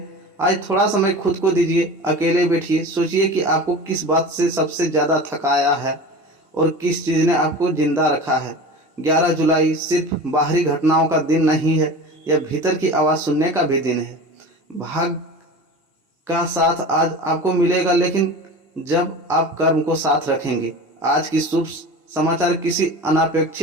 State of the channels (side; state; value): both; normal; correlation 0.33